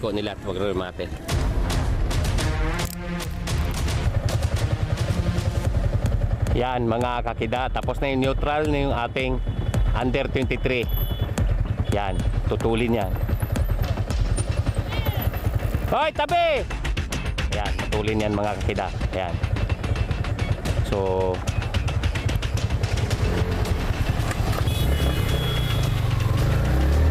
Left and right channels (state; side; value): identical; both; correlation 1.00